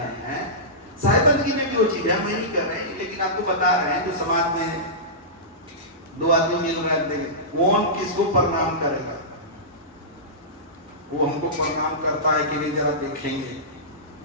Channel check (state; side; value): normal; both; correlation -0.18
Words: हैं, साहेब बंदगी में भी वो चीज है। हम नहीं कर रहे हैं, लेकिन आपको बता रहे हैं। जो समाज में दो आदमी मिल रहे हैं, कौन किसको प्रणाम करेगा? वो हमको प्रणाम करता है कि नहीं, जरा देखेंगे।